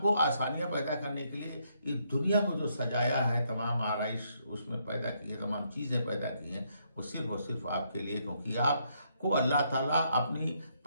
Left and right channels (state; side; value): inverted; both; correlation -0.74